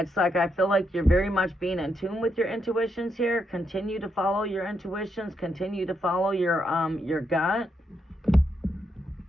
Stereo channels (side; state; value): both; normal; correlation 0.80